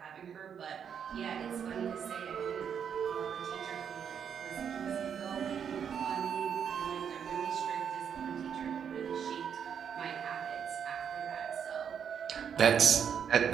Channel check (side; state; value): left; quieter; 7.7 dB